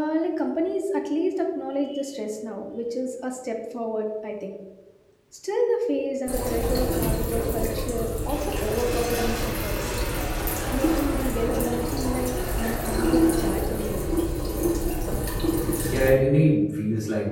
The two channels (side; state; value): both; identical; correlation 1.00